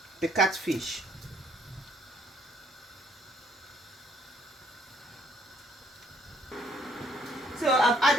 the catfish. So I've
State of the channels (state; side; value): normal; both; correlation 0.66